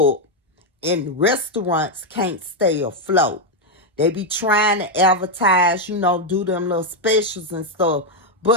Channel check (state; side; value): normal; both; correlation 0.02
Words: and restaurants can't stay afloat. They be trying to advertise, do them little specials and stuff.